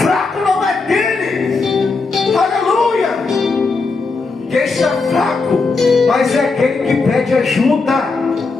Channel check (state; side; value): quieter; right; 4.1 dB